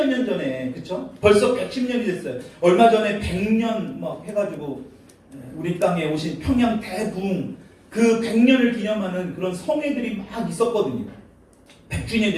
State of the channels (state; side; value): identical; both; correlation 1.00